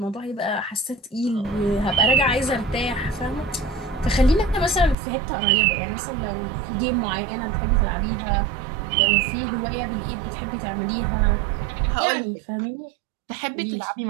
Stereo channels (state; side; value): drops out; left; at 5.0 s